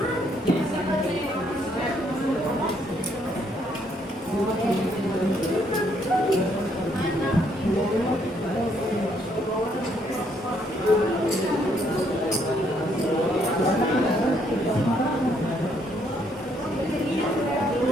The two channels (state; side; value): normal; both; correlation 0.70